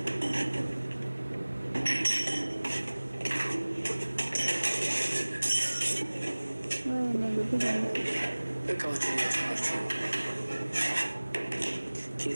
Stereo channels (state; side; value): inverted; both; correlation -1.00